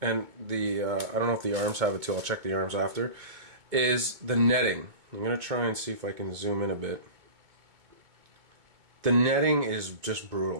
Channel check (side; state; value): left; late; 2.2 ms